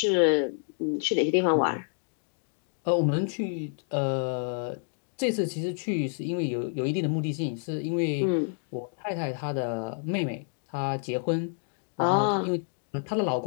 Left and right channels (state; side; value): silent; right; 59 dB below the other